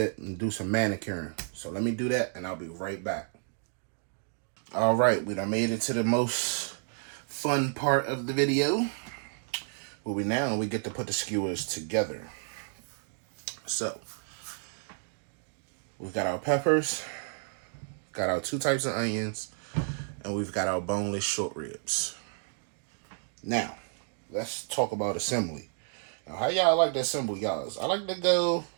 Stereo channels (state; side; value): silent; left; 57 dB below the other